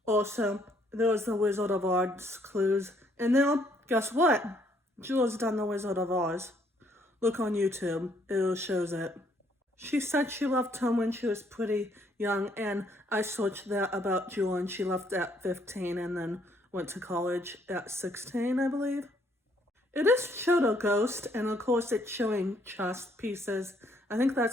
Also, there was the Wizard of Oz clues. And now, guess what? Jewel's done the Wizard of Oz. Look on YouTube. It shows it. She said she left home when she was pretty young, and I searched that about Jewel, and she left at 15 and then went to college at 16, I believe. It is showed a ghost, and of course it's showing chest pieces. I think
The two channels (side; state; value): both; normal; correlation 0.67